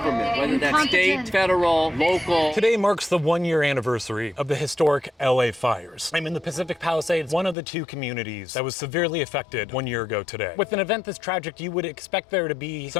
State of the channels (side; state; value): right; drops out; at 7.6 s